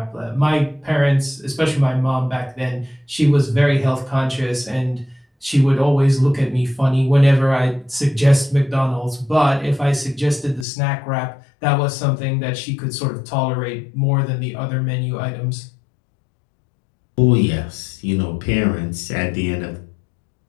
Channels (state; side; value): drops out; right; at 10.7 s